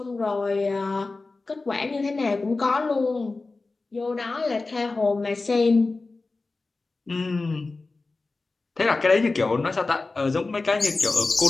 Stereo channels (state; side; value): quieter; right; 3.6 dB